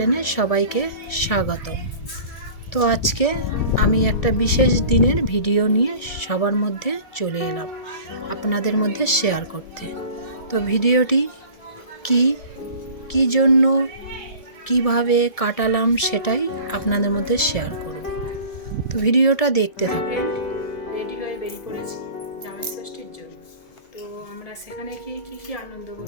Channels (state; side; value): late; right; 1.7 ms